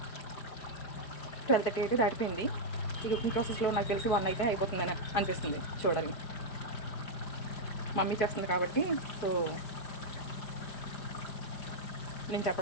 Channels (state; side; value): late; right; 5.0 ms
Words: 12:30 అయితే దాటిపోయింది. ఈ కుకింగ్ ప్రాసెస్లో నాకు తెలిసి 1 అయితే అయిపోతుందని అనిపిస్తుంది. చూడాలి, మమ్మీ చేస్తుంది కాబట్టి. సో నేను